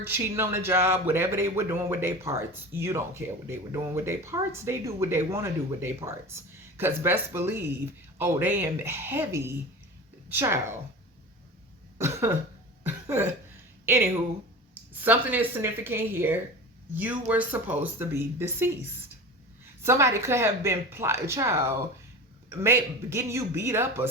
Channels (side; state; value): both; normal; correlation 0.32